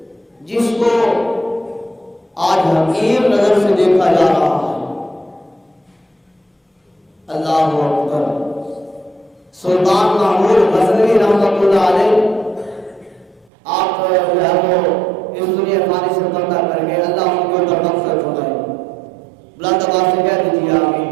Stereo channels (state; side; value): drops out; left; at 13.5 s